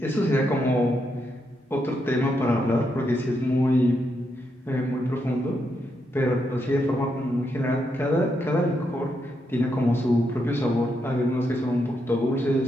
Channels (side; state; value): both; normal; correlation 0.81